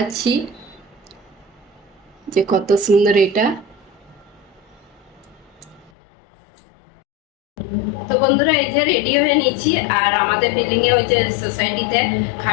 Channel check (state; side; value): drops out; right; at 5.9 s